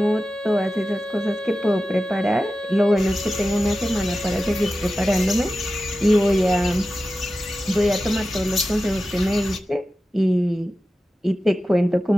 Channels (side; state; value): both; normal; correlation 0.94